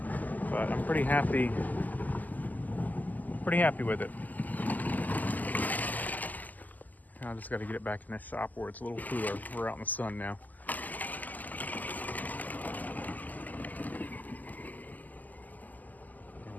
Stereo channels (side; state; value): right; late; 0.082 ms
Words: But I'm pretty happy with it. I just got to get it back in the shop where it's a little cooler. We're out in the sun now.